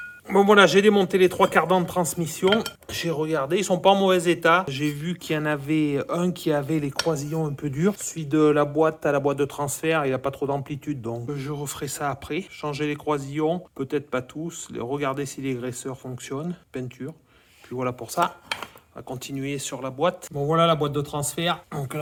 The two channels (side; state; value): both; identical; correlation 1.00